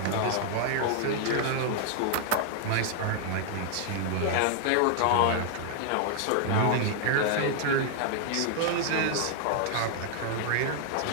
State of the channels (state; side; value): different; both; correlation -0.01